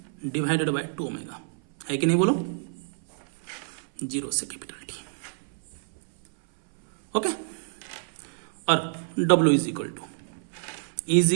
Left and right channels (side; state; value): left; silent; 59 dB below the other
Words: divided by 2 omega, है कि नहीं बोलो, 0 से कैपिटल T। ओके, और W is equal to